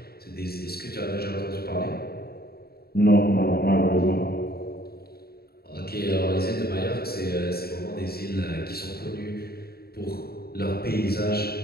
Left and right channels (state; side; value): late; right; 0.45 ms